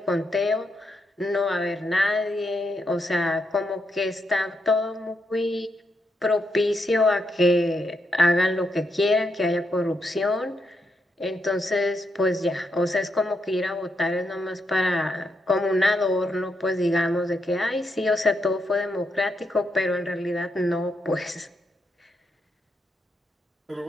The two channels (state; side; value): normal; both; correlation 0.81